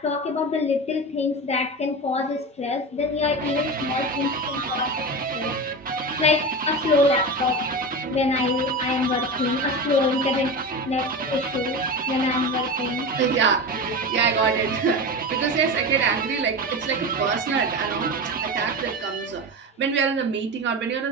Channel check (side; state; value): both; normal; correlation 0.25